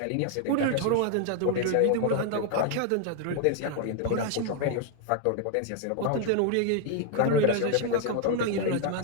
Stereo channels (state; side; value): different; both; correlation 0.00